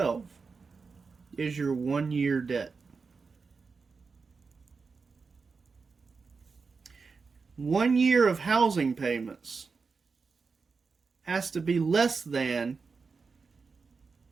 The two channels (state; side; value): quieter; left; 4.8 dB